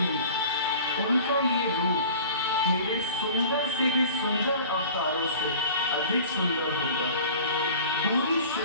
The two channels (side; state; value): both; inverted; correlation -0.42